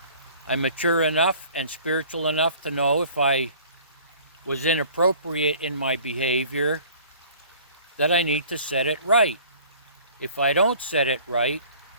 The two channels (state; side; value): inverted; both; correlation -0.50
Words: I'm mature enough and spiritual enough to know if I was inappropriate in my behavior, that I need to set it right. If I don't set it right,